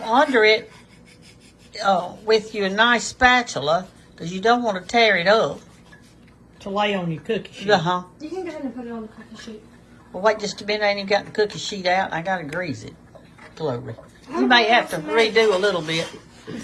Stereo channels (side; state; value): both; identical; correlation 1.00